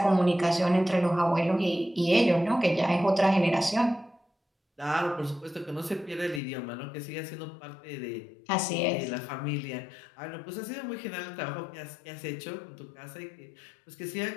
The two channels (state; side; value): drops out; right; at 6.4 s